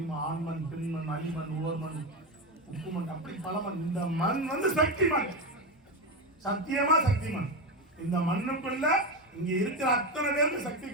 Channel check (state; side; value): normal; both; correlation 0.15